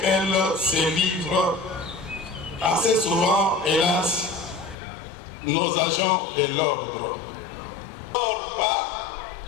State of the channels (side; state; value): right; drops out; at 4.8 s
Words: se livrent assez souvent, hélas, nos agents de l'ordre.